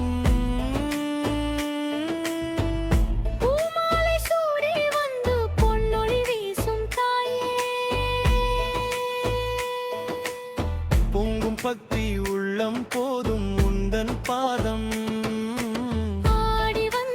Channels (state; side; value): identical; both; correlation 1.00